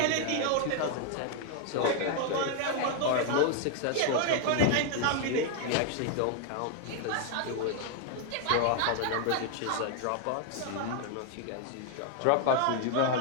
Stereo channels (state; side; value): different; both; correlation 0.00